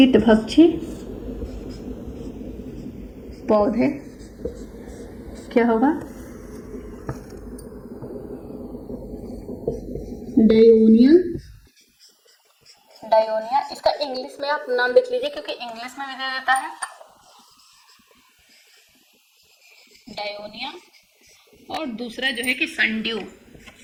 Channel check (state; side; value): identical; both; correlation 1.00